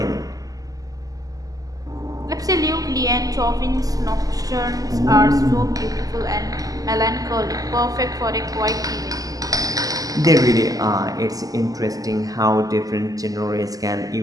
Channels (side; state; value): left; late; 0.17 ms